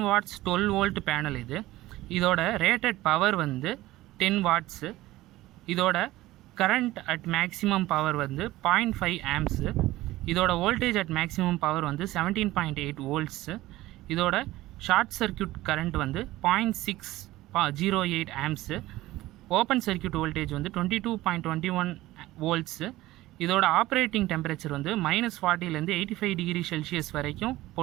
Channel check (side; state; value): left; quieter; 17.2 dB